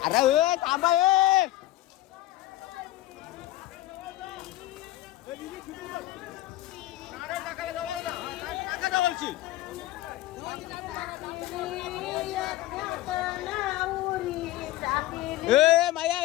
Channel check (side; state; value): right; quieter; 15.9 dB